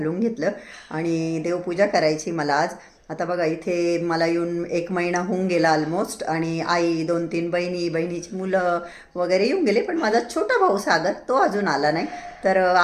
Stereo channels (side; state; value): both; identical; correlation 1.00